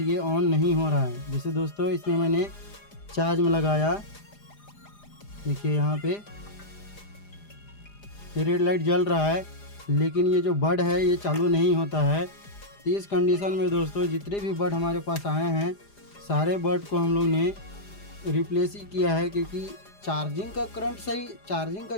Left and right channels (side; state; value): right; late; 4.9 ms